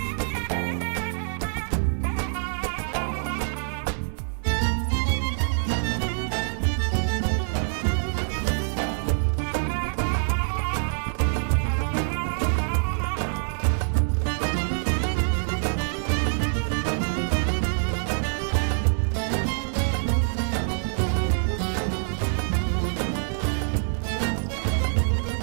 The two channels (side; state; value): left; silent; 61 dB below the other